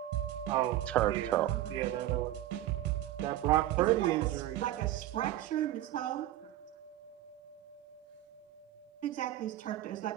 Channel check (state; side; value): quieter; left; 13.9 dB